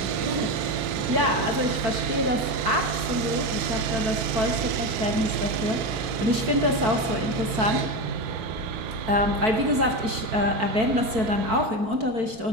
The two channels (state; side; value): late; left; 4.5 ms